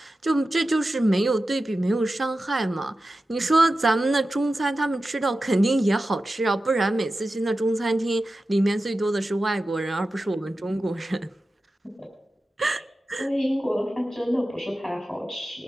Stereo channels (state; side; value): normal; both; correlation 0.93